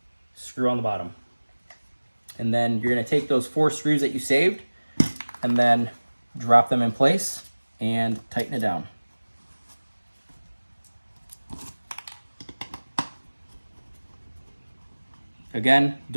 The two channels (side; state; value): both; inverted; correlation -1.00